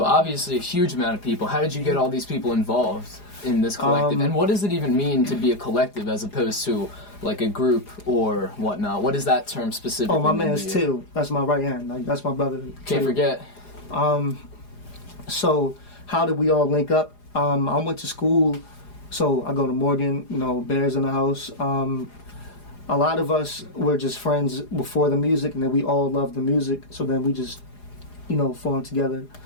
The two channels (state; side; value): late; right; 4.9 ms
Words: obviously a huge amount of people. How did you get all these people involved in this collective? And what does it even mean to be a collective as opposed to like a group or whatnot? What does that term specifically mean? Oh, my man's Till. That's my right hand. Like, that's my brother. Can't forget. So how did we all link up? I went to school, so I go to Morgan, you know, Bears in the house. A lot of us were just friends before the music, and then we all loved the music, so then we just, you know, formed together.